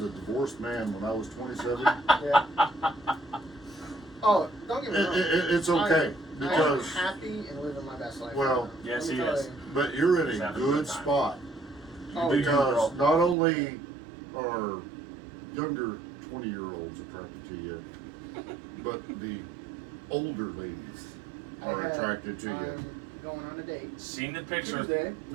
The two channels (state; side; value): drops out; left; at 13.4 s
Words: a divorced man, when I was 27, Yeah. Oh, don't get me wrong. it's okay I'm because, happy and living my best life. well, Yes, Let me he tell is. you. but you're in He's a having a good good time. spot Oh, Do you, because girl? not only are younger 20-year-olds attracted to you, but the older ladies are attracted to you. I'm going on a date Seen the picture. Tuesday.